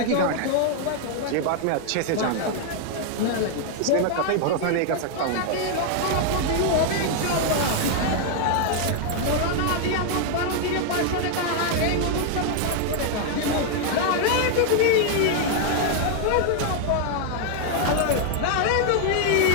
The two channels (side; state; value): both; different; correlation 0.00